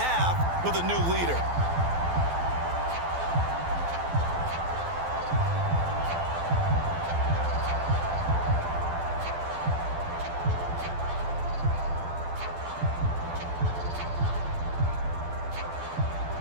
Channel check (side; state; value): left; late; 12 ms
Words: with a new leader.